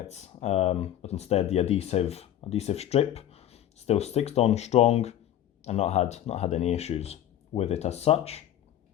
but instead the adhesive strip still sticks on strong, and not had any issues with it as such.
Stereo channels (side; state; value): right; quieter; 11.6 dB